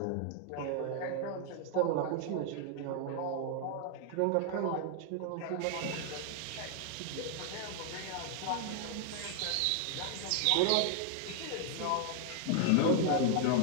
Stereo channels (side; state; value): both; different; correlation 0.00